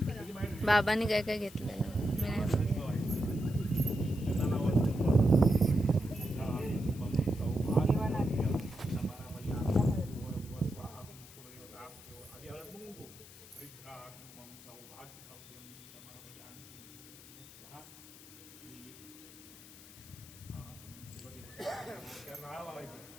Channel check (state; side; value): noise; left; hiss, 19 dB below the sound